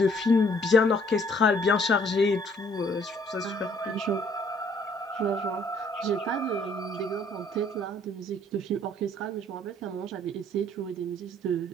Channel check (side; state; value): both; normal; correlation 0.62